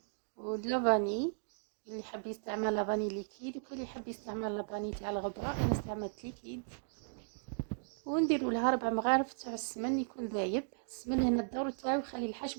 واللافاني. اللي حاب يستعمل لافاني ليكيد وكل اللي يحب يستعمل لافاني تاع الغبره، انا استعملت ليكيد. ونديروا لها 4 مغارف تاع السمن يكون ذايب. السمن هنا الدور تاعو يخلي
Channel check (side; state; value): left; silent; digital silence